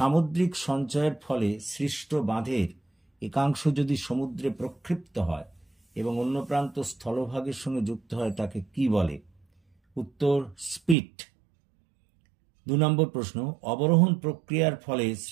সঞ্চয়ের ফলে সৃষ্ট বাঁধের একাংশ যদি সমুদ্রে প্রক্ষিপ্ত হয় এবং অন্য প্রান্ত স্থলভাগের সঙ্গে যুক্ত হয় তাকে কি বলে? উত্তর স্পিট। 2 নম্বর প্রশ্ন, অবরোহণ প্রক্রিয়ার ফলে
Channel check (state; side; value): drops out; left; at 11.0 s